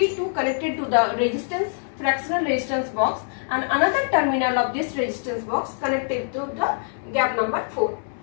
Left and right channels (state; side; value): silent; right; digital silence